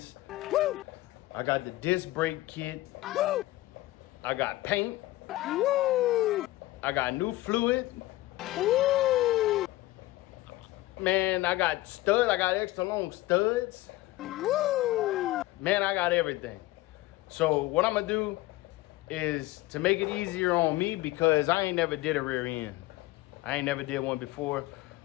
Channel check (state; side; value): quieter; right; 18.0 dB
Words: Woo! I got the disc brake kit. Woo! I got paint. Woo! I got new fluid. Woo! Man, I got studs. I got extra long studs. Woo! Man, I got everything. So what I'm gonna do is to make it easier on me, because I ain't never did a rear end. I ain't never did one before.